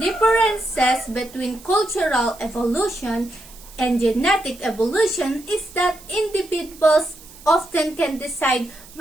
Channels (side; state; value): right; noise; hiss, 21 dB below the sound